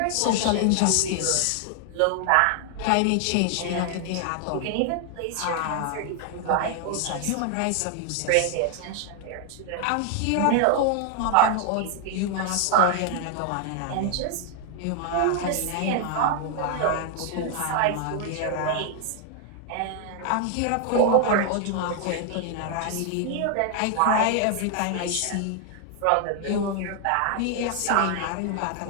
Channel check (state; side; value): different; both; correlation 0.00